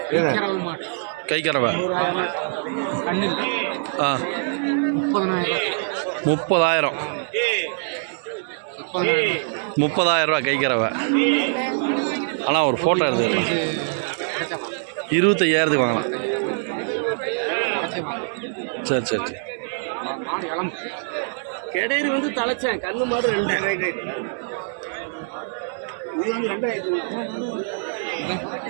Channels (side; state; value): left; silent; 63 dB below the other